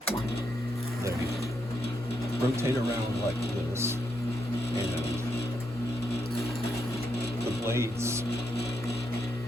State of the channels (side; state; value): both; normal; correlation 0.80